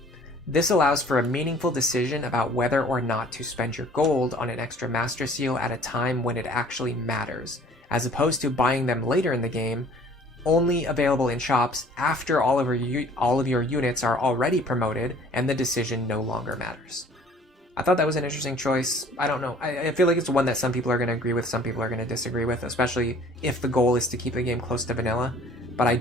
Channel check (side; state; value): both; normal; correlation 0.52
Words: This allows for a meaningful decision about whether or not to spend your gold on an extra master seal at a time when it actually matters, as opposed to buying them later in the game, only available in shops after all of your units are already promoted and the decision no longer matters. I thought that was an interesting choice. I don't know. I feel like it's one that some people are going to agree with, some people are going to disagree with, especially if the goal is to keep the game close to vanilla. But I